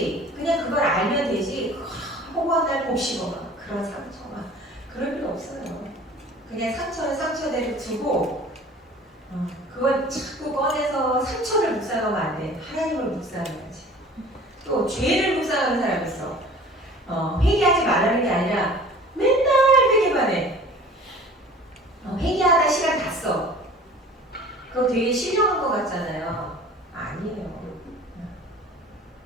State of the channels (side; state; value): both; normal; correlation 0.45